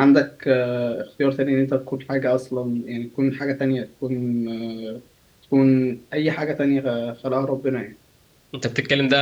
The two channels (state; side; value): identical; both; correlation 1.00